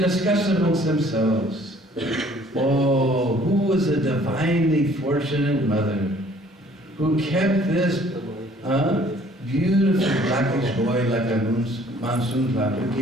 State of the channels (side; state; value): both; normal; correlation 0.57